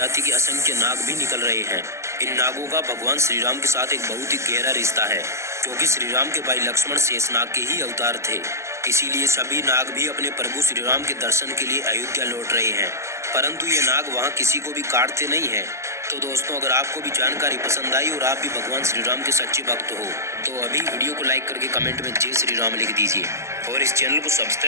के असंख्य नाग भी निकल रहे हैं। इन नागों का भगवान श्री राम के साथ एक बहुत ही गहरा रिश्ता है, क्योंकि श्री राम के भाई लक्ष्मण शेषनाग के ही अवतार थे। इसीलिए सभी नाग भी अपने प्रभु श्री राम के दर्शन के लिए अयोध्या लौट रहे हैं, परंतु ये नाग वहाँ किसी को भी काटते नहीं हैं। तो दोस्तों, अगर आपको भी जानकारी पसंद आई और आप भी भगवान श्री राम के सच्चे भक्त हो, तो अभी वीडियो को लाइक करके कमेंट में जय श्री राम लिख दीजिए, और इस चैनल को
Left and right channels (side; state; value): left; late; 0.13 ms